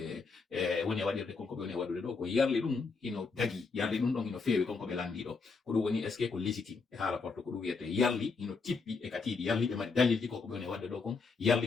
woni waɗirde konko ɓe woni waɗude ɗo ko yarli ɗum hino dagi yarli ɗum ɗon hino feewi konko ɓe landiɗo ko ɗum woni est ce que ko légitime e haala porto ko ɗum wiyete yarli hino tippi e katiɗi yarli ɓe mari dalilji koko ɓe woni wadde ɗo kon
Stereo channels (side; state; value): right; quieter; 4.6 dB